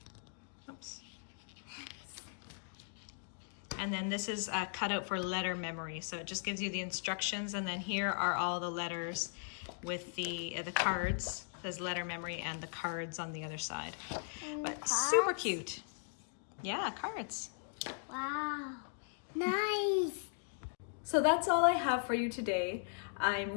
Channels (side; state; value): right; silent; digital silence